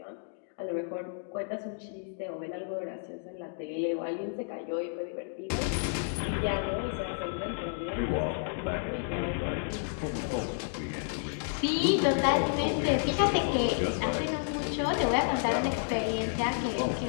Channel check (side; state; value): right; silent; digital silence